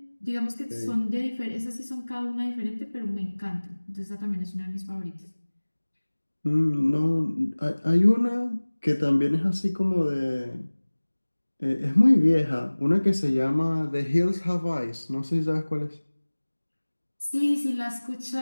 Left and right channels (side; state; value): both; inverted; correlation -1.00